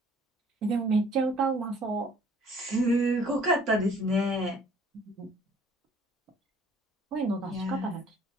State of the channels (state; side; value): normal; both; correlation 0.57